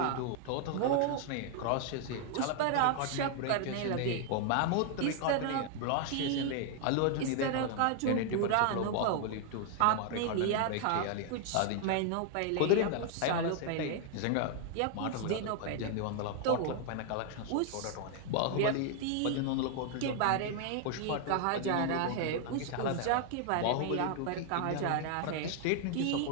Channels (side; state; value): both; different; correlation 0.00